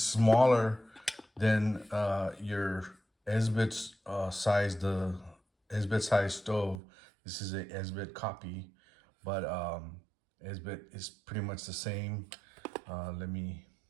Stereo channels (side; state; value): left; drops out; at 6.8 s